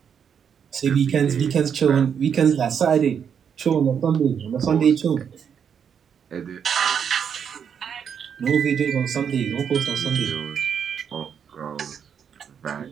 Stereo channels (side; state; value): left; quieter; 7.6 dB